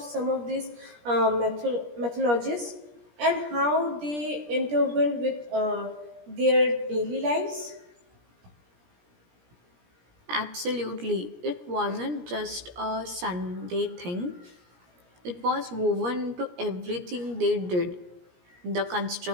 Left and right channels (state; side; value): late; left; 17 ms